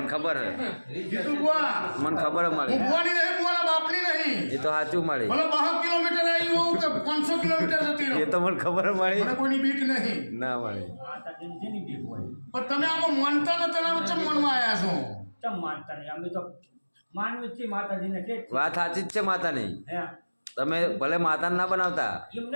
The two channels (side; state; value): both; inverted; correlation -1.00